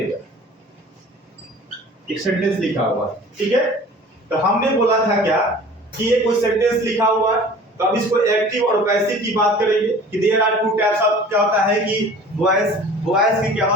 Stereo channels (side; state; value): both; normal; correlation 0.44